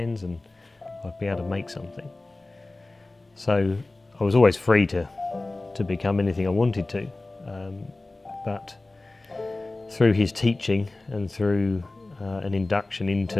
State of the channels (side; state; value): right; quieter; 3.0 dB